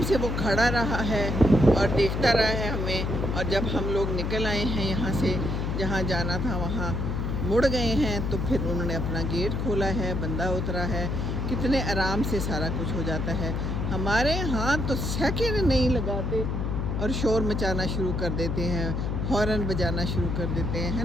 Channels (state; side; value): noise; left; hum, 1 dB below the sound